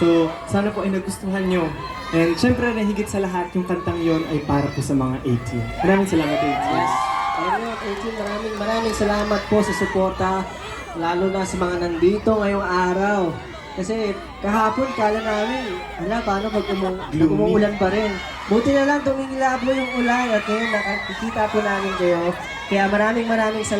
So, sana po ay nagustuhan nyo. And syempre, na higit sa lahat, yung kantang yon ay para po sa mga 18. Maraming salamat, 18. Yes. Ayun, 18, maraming salamat po sa suporta, lalo na sa mga nandito ngayong araw. Kasi kahapon kala namin, paano pag umuulan pa rin. Buti na lang tumingilab mo yung ulan at ngayon nakikita po namin kayo. Kaya maraming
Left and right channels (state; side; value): identical; both; correlation 1.00